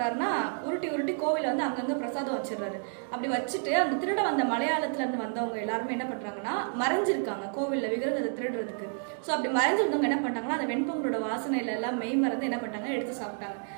உருட்டி கோவில் அங்கங்க பிரசாதம் வச்சிடறாரு. அப்படி வச்சுட்டு அந்த திருட வந்த மலையாளத்துல இருந்து வந்தவங்க எல்லாருமே என்ன பண்றாங்கன்னா, மறைஞ்சிருக்காங்க கோவில்ல விக்கிரகத்தை திருடுறதுக்கு. ஸோ அப்படி மறைஞ்சிருந்தவங்க என்ன பண்றாங்கன்னா, அந்த வெண்பொங்கலோட வாசனையில எல்லாம் மெய் மறந்து என்ன பண்ணாங்க, எடுத்து சாப்பிட்டாங்க.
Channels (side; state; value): left; silent; 58 dB below the other